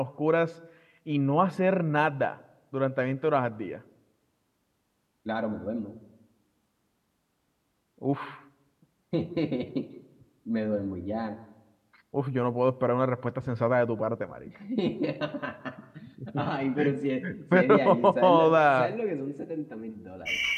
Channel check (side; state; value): both; identical; correlation 1.00